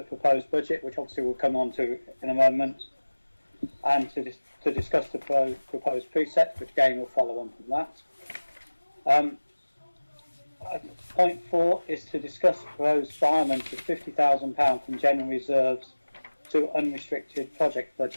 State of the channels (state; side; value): inverted; both; correlation -1.00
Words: proposed budget, which obviously we'll come on to in a moment, and to discuss the proposed precepts, which again will follow on from that. Point 4 is to discuss the proposed requirement of £50,000 from general reserves to unrestricted project